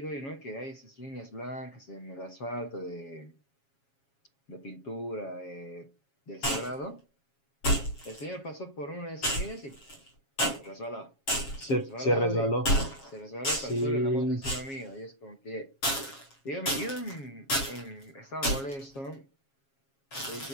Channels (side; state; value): right; late; 7.3 ms